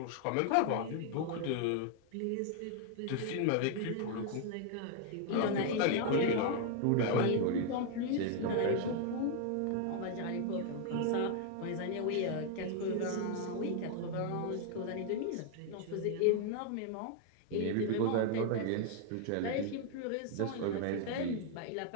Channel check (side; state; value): both; different; correlation 0.00